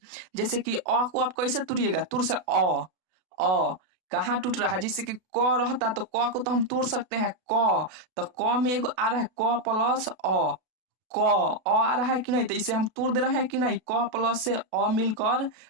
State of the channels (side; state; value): left; late; 32 ms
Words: जैसे कि अ को आप कैसे तोड़िएगा, तुर से अ कहाँ टूट रहा है। जैसे कि क रहता तो क को तो हम तोड़ सकते हैं, क तो क में एगो आ रहा है क प्लस क आ रहा है कि नहीं, तो इसे हम तोड़ दे रहे हैं कि नहीं। क प्लस से मिलकर